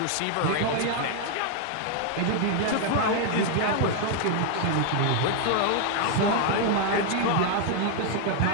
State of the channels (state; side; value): different; both; correlation 0.00